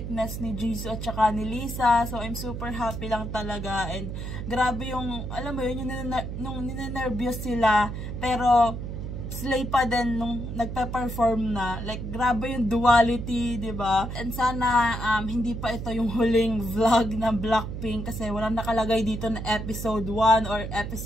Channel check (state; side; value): noise; right; hum, 6 dB below the sound